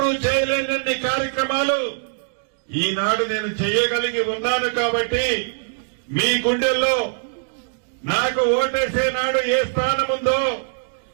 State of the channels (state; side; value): silent; left; digital silence